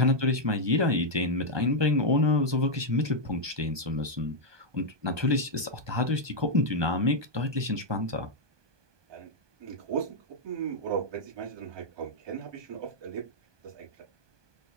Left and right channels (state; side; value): late; left; 1.2 ms